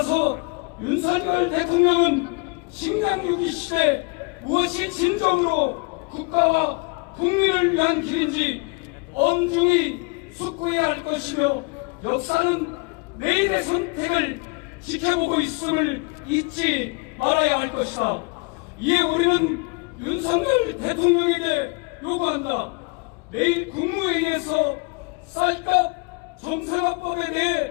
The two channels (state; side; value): quieter; right; 30.6 dB